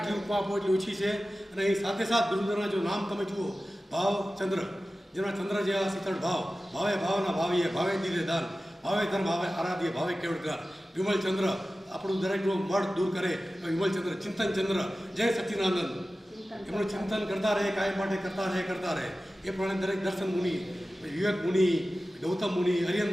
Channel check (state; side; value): normal; both; correlation 0.95